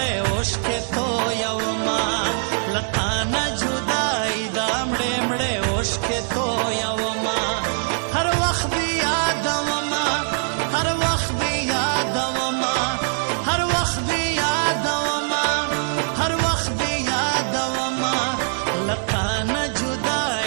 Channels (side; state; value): left; silent; 64 dB below the other